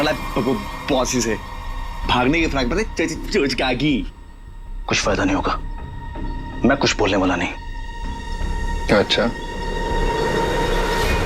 ला पॉसी से, भागने की फ्रैक पता चोचकागी। कुछ फायदा नहीं होगा, मैं कुछ बोलने वाला नहीं। अच्छा,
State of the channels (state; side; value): identical; both; correlation 1.00